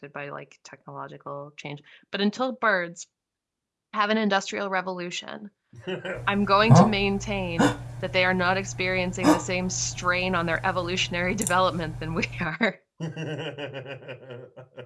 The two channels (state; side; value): identical; both; correlation 1.00